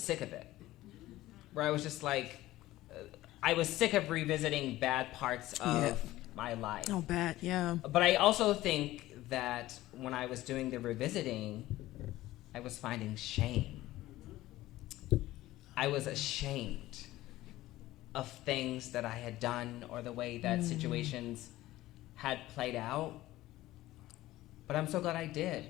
of it, where I was just like, I was sick of revisiting bad parts of my life. Oh, bad, yeah. But I also think that when I was doing the revisiting, I was finding shame. I was ashamed of things that I had done or the way that situations had played out. But I'm so glad I did,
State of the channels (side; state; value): right; quieter; 16.4 dB